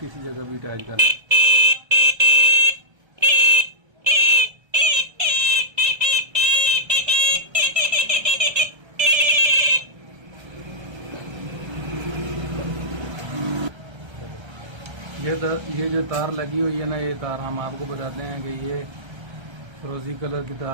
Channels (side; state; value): left; late; 1.3 ms